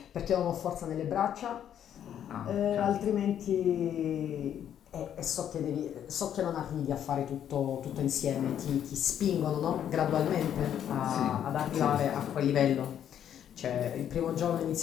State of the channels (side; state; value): right; quieter; 9.8 dB